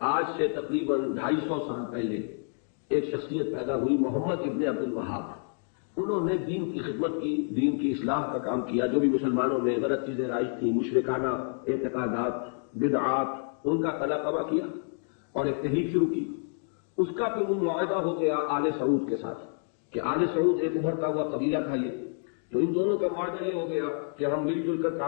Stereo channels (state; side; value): silent; right; 59 dB below the other